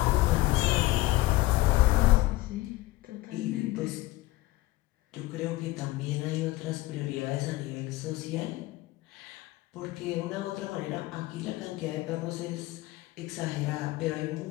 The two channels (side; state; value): right; quieter; 18.4 dB